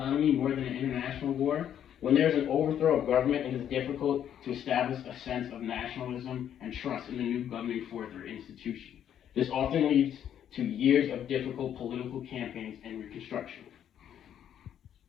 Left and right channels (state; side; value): quieter; right; 9.8 dB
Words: more than an international war. When there is an overthrow of government, it is difficult to establish a sense of nationalism and trust in the new governing force or institution. This often leads to years of difficult political campaigns and reconstruction.